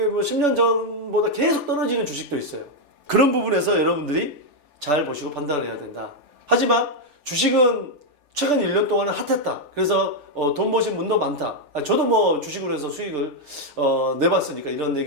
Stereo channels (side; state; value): left; late; 3.4 ms